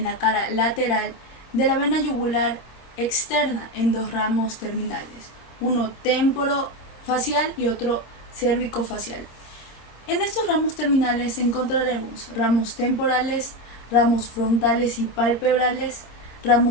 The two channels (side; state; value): right; late; 26 ms